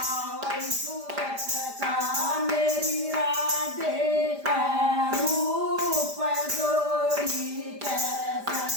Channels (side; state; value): left; late; 5.0 ms